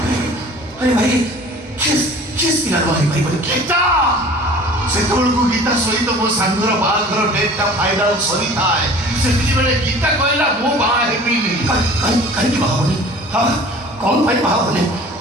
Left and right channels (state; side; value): normal; both; correlation 0.45